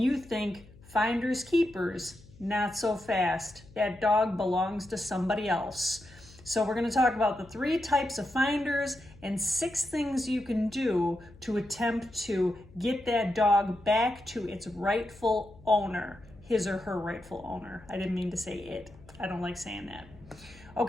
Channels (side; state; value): left; noise; hum, 23 dB below the sound